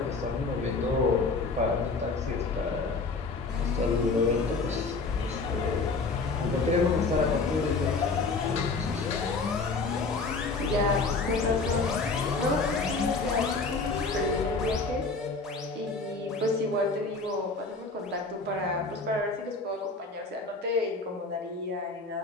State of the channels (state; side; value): quieter; right; 3.9 dB